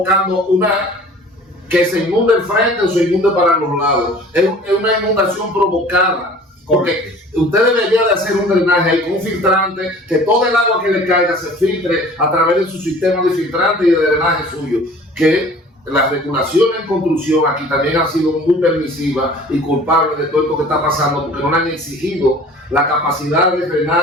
que se inunde el frente o se inunde para los lados. Es una inundación provocada, porque usted debería de hacer un drenaje ahí con un filtrante, que todo el agua que le caiga se filtre a través de su sistema de filtrante y de drenaje suyo, que la regulación en construcción aquí también ha sido muy permisiva y culpable de todo esto que está pasando, porque no le han exigido la capacidad de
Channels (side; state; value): both; normal; correlation 0.47